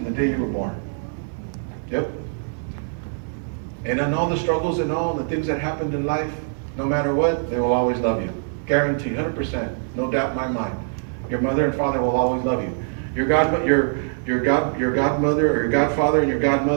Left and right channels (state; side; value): silent; left; digital silence